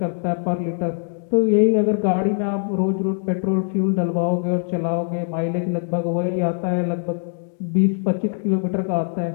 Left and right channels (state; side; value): silent; right; 64 dB below the other